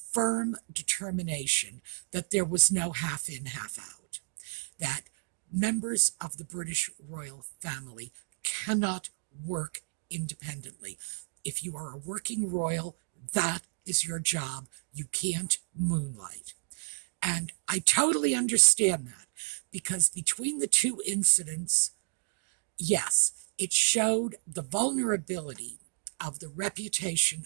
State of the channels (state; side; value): silent; left; digital silence